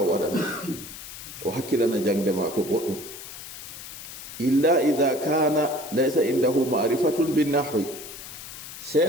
o hakkilana jangde mako boɗɗum illa idha kana laysa indahu ma'rifatun bin nahwi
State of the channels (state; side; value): noise; left; hiss, 12 dB below the sound